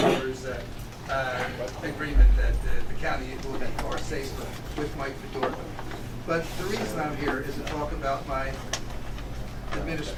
agreement that the county will be far safer with Mike Fedorko. But the reason I'm here is to talk about my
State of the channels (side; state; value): both; identical; correlation 1.00